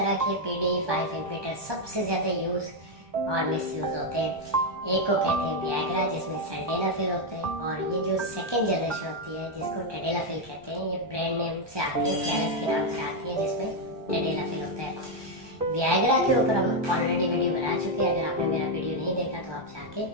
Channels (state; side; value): late; left; 1.2 ms